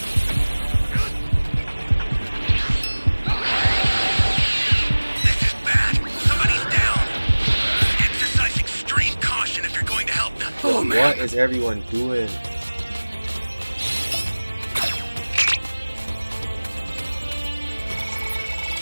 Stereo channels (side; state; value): both; inverted; correlation -1.00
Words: This is bad. Somebody's down. Exercise extreme caution if you're going to help them. Oh, man. What is everyone doing?